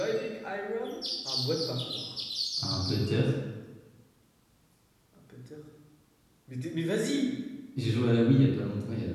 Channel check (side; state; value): both; identical; correlation 1.00